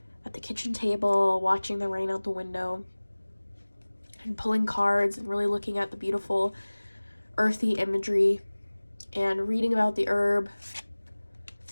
at the kitchen table, watching the rain out the window and pulling cards and really looking at the beautiful earthy imagery and reading about the herb,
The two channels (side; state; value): both; inverted; correlation -1.00